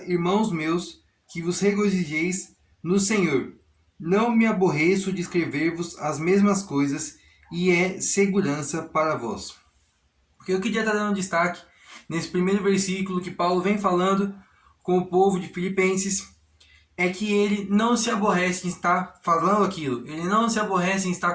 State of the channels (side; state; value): both; identical; correlation 1.00